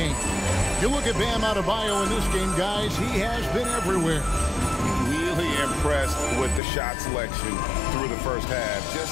You look at Bam Adebayo in this game, guys, he has been everywhere. Really impressed with the shot selection through the first half,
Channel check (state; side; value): drops out; right; at 6.6 s